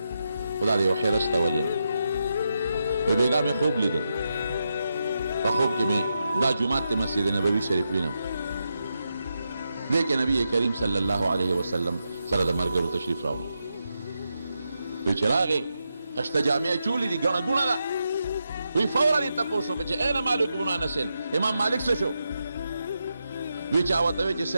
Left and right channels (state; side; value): inverted; both; correlation -0.86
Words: خو دا د یو حرص ته وجه ده وایي بېګا مې خوب لیده په خوب کې مې دا جومات د مسجد نبوي شریف وینم دې کې نبي کریم صلی الله علیه وسلم سره د ملګرو تشریف راوړو وایي چې راغې خشته جامې چولې دي ګڼه ګوڼه ده وی فورا یې تپوس وکړه چې این مالک بن انس امام مالک څه شو وی چا ورته وی چې